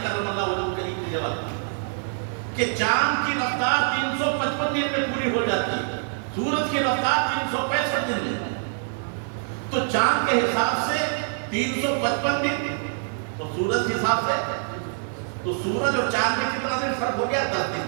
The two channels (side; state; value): left; silent; digital silence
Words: کرم اللہ وجہہ کریم نے جواب دیا کہ چاند کی رفتار 355 دن میں پوری ہو جاتی ہے، سورج کی رفتار 365 دن میں. تو چاند کے حساب سے 355 دن، تو سورج کے حساب سے تو سورج اور چاند میں کتنا دن فرق ہو گیا؟ 10